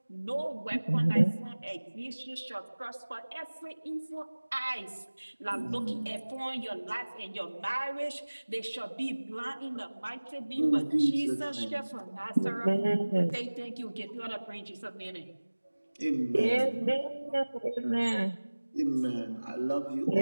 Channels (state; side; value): inverted; both; correlation -1.00